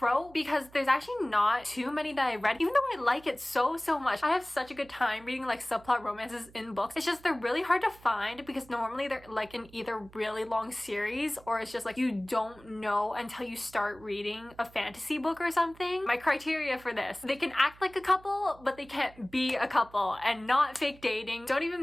because there's actually not too many that I read, even though I like it so much. I have such a good time reading subplot romances in books. It's just they're really hard to find because normally they're in either really long series or it's just you don't know until you start reading a fantasy book or something. My criteria for this: they can act like a couple, but they can't be a couple, and not fake dating. Don't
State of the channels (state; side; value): noise; right; hum, 23 dB below the sound